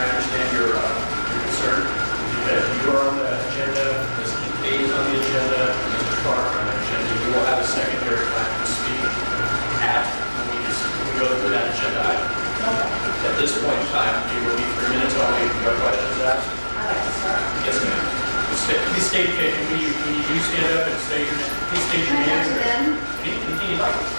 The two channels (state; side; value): inverted; both; correlation -1.00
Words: understand your concern. Because you are on the agenda, Mr. A is on the agenda, Mr. Clark on the agenda, you will have a secondary time to speak at when we go through that agenda item. At this point in time, it will be 3 minutes only. No questions asked? I'd like to start. Yes, ma'am. Please state, when you do stand up and state your name, please state your name. Anything you'd like.